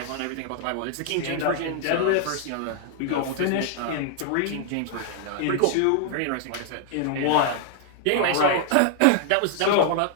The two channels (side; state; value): both; different; correlation -0.01